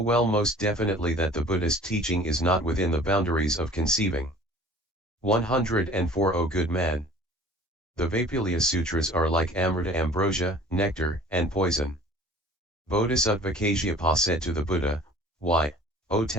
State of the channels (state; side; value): normal; both; correlation 0.47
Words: most definitely that the Buddhist teaching is not within the boundaries of conceiving. 104 O good man. The Vaipulia Sutras are like amrita, ambrosia, nectar, and poison. Bodhisattva Kasyapa said to the Buddha, "Why, O